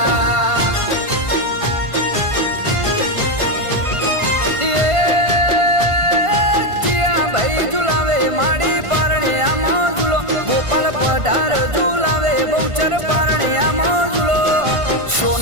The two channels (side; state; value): left; late; 1.5 ms